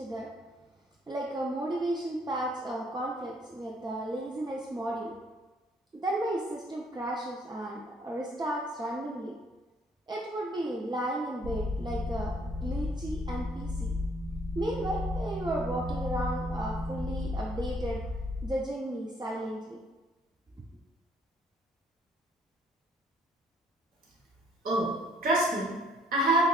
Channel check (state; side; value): normal; both; correlation 0.65